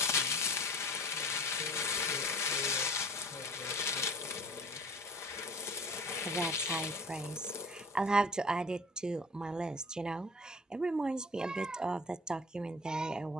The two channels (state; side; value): normal; both; correlation 0.42